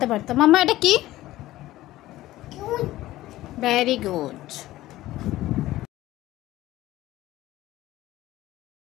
পারতো। মাম্মা এটা কি? Very good.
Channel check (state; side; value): quieter; right; 16.0 dB